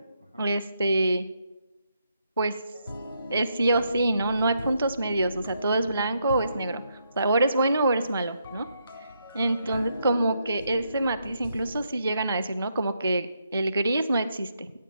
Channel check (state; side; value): inverted; both; correlation -0.78